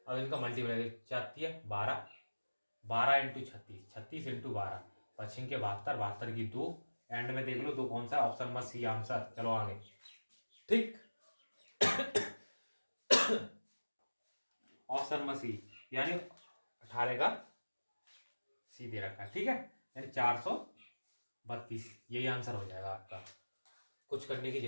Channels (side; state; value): both; inverted; correlation -1.00